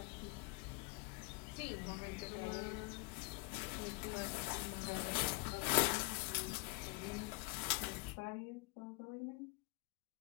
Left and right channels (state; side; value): quieter; right; 27.2 dB